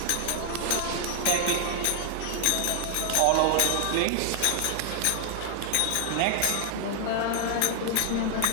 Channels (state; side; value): different; both; correlation 0.00